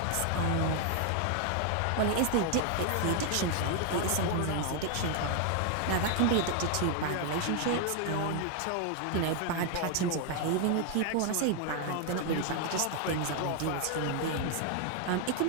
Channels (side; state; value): both; different; correlation 0.00